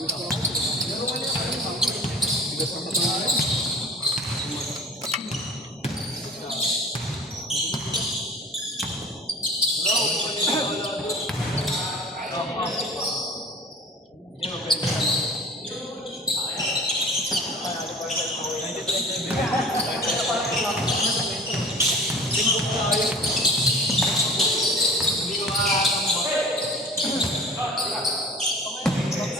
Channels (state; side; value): normal; both; correlation 0.43